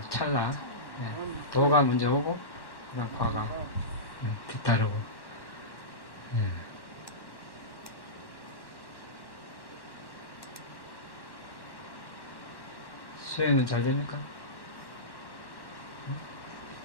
찰나, 도가 먼저 오고 그다음 과가 뒤따르고. 수행은 잘 됩니까?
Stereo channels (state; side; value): late; right; 1.1 ms